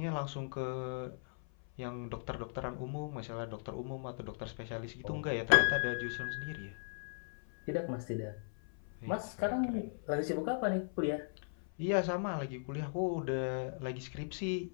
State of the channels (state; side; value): silent; right; 53 dB below the other